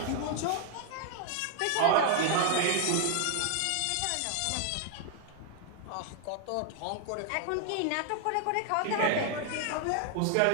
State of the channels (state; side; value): different; both; correlation 0.00